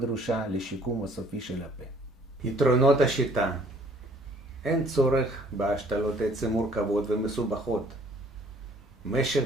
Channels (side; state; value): both; normal; correlation 0.58